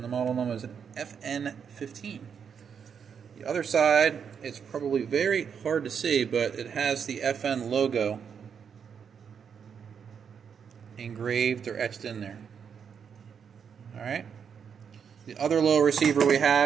the model number is an FN15. The other side, it's probably very hard to see, but it has the FN logo engraved or etched in there. Alright. The other lower receiver we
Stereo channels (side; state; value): left; quieter; 7.1 dB